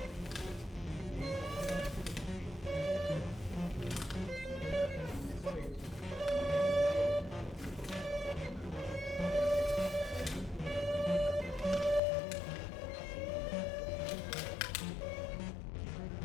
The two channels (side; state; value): right; drops out; at 12.0 s